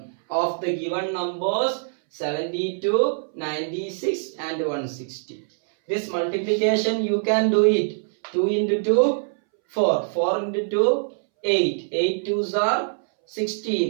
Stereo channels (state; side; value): silent; left; 63 dB below the other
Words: of the given numbers 72, 96 and 160. This multiplication you can do it. 2 into 2, 4. 4 into 2, 8. 8 twos are